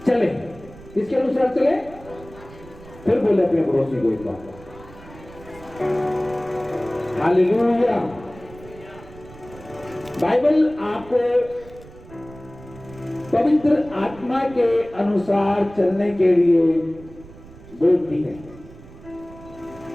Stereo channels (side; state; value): right; noise; rumble, 19 dB below the sound